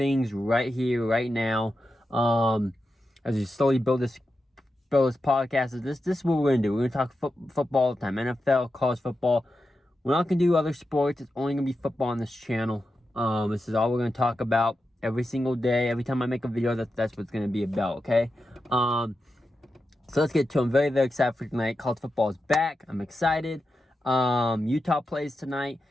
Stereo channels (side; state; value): both; normal; correlation 0.90